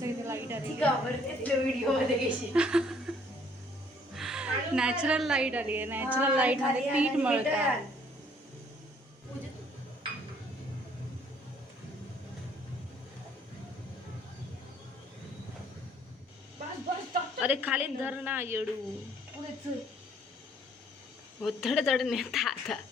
इथे लाईट आली. व्हिडिओ मध्ये घेशील. नॅचरल लाईट आली आहे. नॅचरल लाईट मध्ये पीठ मळता. अरे खाली धर ना येडू. थोडं थोडं नेता आता.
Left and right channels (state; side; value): normal; both; correlation 0.62